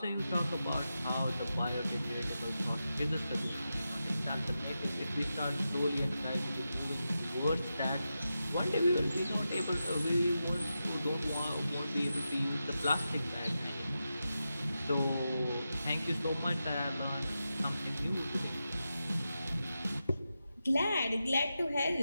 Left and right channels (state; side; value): inverted; both; correlation -0.90